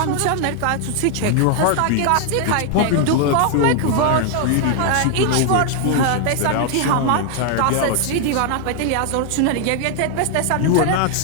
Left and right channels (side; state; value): both; different; correlation 0.00